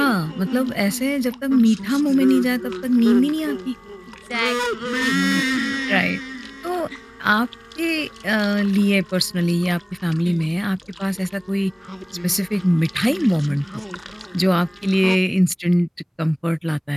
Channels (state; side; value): identical; both; correlation 1.00